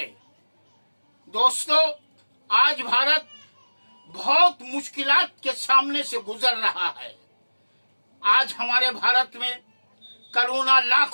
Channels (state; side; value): inverted; both; correlation -1.00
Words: दोस्तों, आज भारत बहुत मुश्किलात के सामने से गुजर रहा है। आज हमारे भारत में कोरोना